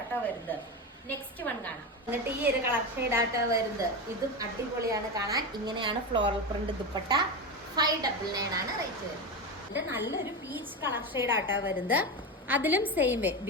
വരുന്നത്. നെക്സ്റ്റ് വൺ കാണാം. എന്നിട്ട് ഈ ഒരു കളർ ഷെയ്ഡ് ആട്ടോ വരുന്നത്. ഇതും അടിപൊളിയാണ് കാണാൻ. ഇങ്ങനെയാണ് ഫ്ലോറൽ പ്രിന്റ് ദുപ്പട്ട. 599 ആണ് റേറ്റ് വരുന്നത്. ഇത് നല്ലൊരു പീച്ച് കളർ ഷെയ്ഡ് ആട്ടോ വരുന്നത്. അതിലും സെയിം വേ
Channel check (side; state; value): both; normal; correlation 0.18